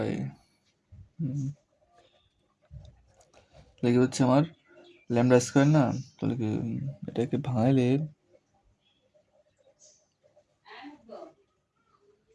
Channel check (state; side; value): identical; both; correlation 1.00